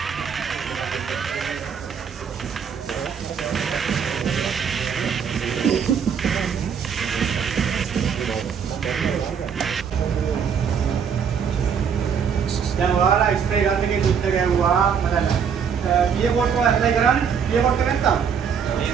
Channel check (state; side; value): quieter; left; 7.1 dB